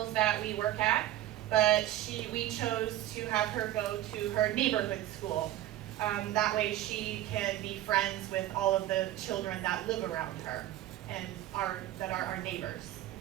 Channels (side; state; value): left; quieter; 13.8 dB